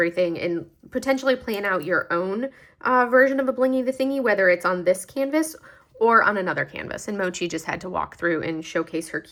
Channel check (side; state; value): both; identical; correlation 1.00